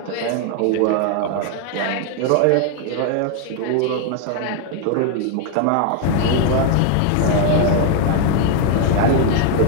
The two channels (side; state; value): both; different; correlation 0.01